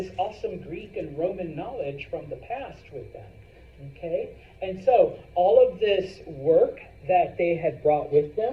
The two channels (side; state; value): both; identical; correlation 1.00